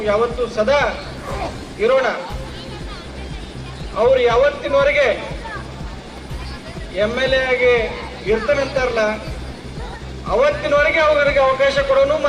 ಯಾವತ್ತೂ ಸದಾ ಇರೋಣ. ಅವ್ರು ಯಾವತ್ತಿನವರೆಗೆ MLA ಆಗಿ ಇರ್ತಾನಂತಾರಲ್ಲ, ಅವತ್ತಿನವರೆಗೆ ಅವ್ರಿಗೆ ಅವಕಾಶ ಕೊಡೋನು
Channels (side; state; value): both; identical; correlation 1.00